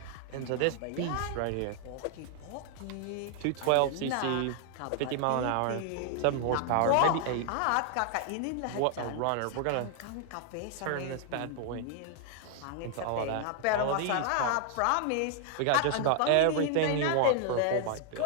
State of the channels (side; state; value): both; different; correlation 0.00